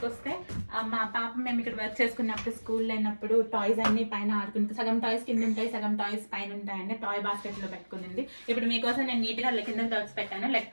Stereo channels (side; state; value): both; inverted; correlation -1.00